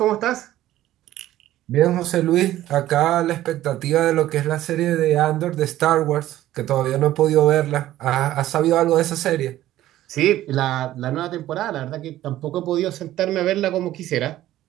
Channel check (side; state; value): left; quieter; 14.1 dB